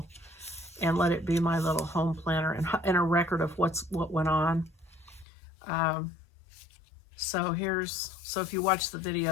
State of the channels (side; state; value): right; drops out; at 5.2 s